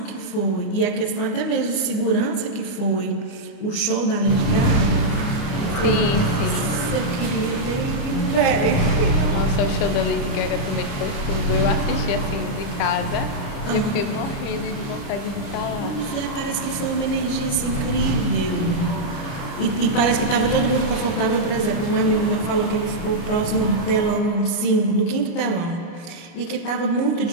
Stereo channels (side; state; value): right; late; 29 ms